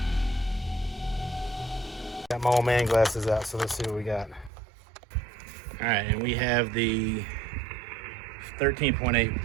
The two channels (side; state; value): left; drops out; at 4.5 s